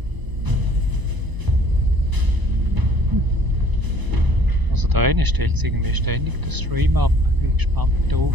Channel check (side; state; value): left; late; 1.0 ms